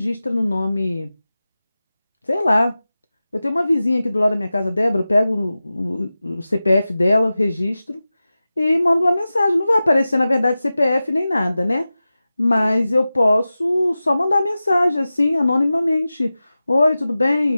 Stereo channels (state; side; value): inverted; both; correlation -0.95